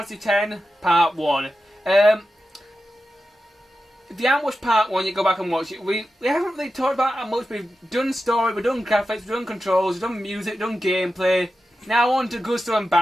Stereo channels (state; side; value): normal; both; correlation 0.92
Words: Fantasy X, part 1. If you haven't watched part 1, you go back and watch it. We haven't really talked about how much. We've done story, we've done graphics, we've done controls, we've done music, we've done gameplay. Now on to good stuff and